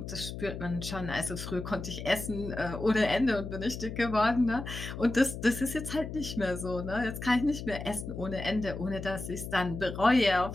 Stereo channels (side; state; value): left; noise; hum, 8 dB below the sound